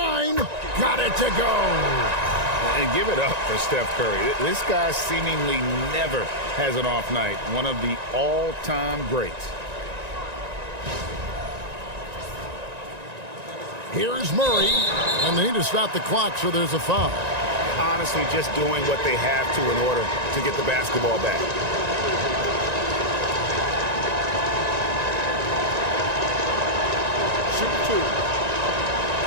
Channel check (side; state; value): left; late; 1.9 ms